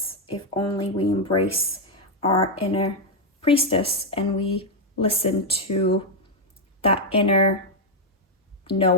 if only we embrace our inner priestess and we listen to that inner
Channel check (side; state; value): both; normal; correlation 0.00